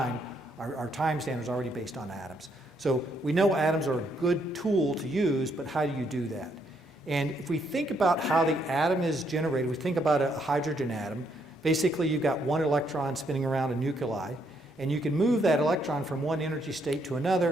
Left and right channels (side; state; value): both; normal; correlation 0.73